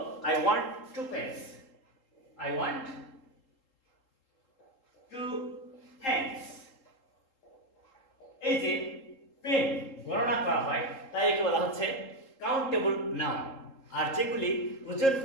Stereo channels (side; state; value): right; late; 3.8 ms